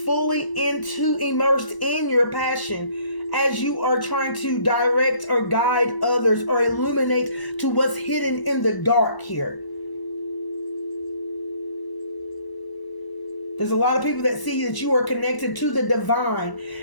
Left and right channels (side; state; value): right; late; 1.0 ms